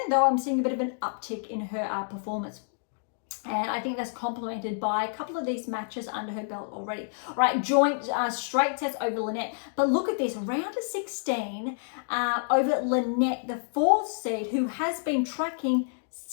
though, I'm seeing a bit of an uptick in her performance. And I think that's complemented by a couple of these matches under her belt already. All right, joint straight sets over Lynette. But look at this, round of 16 over Lynette, the 4th seed, who has been tracking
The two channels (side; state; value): right; silent; digital silence